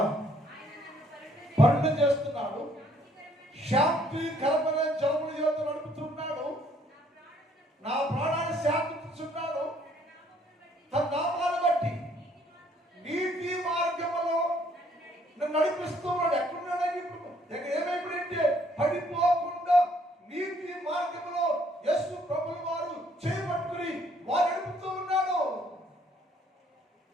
పరుణ చేస్తున్నాడు, శాంతికరమైన జలముల యొద్ద నడుపుతున్నాడు, నా ప్రాణాన్ని శాంతిస్తున్నాడు, తన నామాన్ని బట్టి నీతి మార్గములో నన్ను నడిపిస్తున్నాడు. ఎక్కడున్నాడు ఇప్పుడు? ఏమైపోయిందంటే పడిపోకుండా నీతి మార్గంలో యేసు ప్రభుల వారు చేయబట్టుకుని వారు నడుపుతూ ఉన్నాడు.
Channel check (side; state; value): both; normal; correlation 0.64